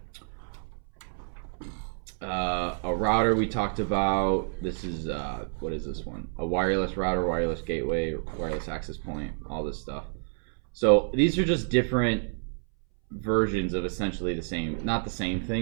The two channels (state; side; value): silent; left; 59 dB below the other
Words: A router we talked about. This is, what is this one? A wireless router, wireless gateway, wireless access point, all this stuff. So these are just different versions of essentially the same, not the same